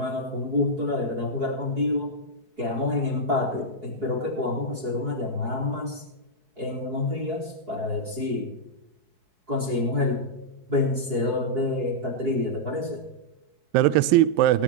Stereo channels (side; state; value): left; late; 4.7 ms